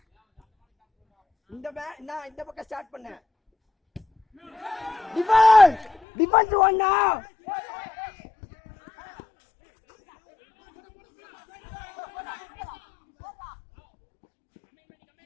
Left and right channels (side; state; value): right; drops out; at 6.0 s